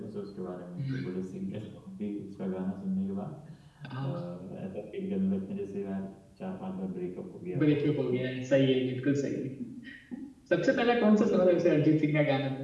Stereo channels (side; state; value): both; identical; correlation 1.00